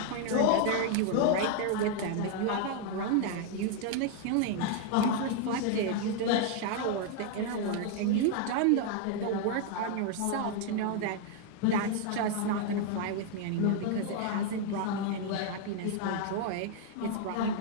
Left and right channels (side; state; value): both; different; correlation 0.00